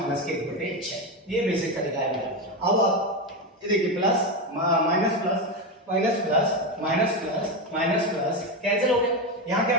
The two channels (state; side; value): normal; both; correlation 0.13